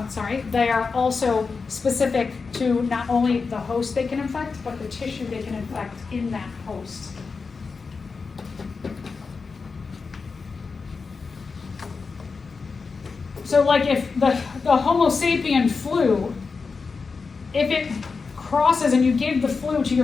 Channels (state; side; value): quieter; right; 4.7 dB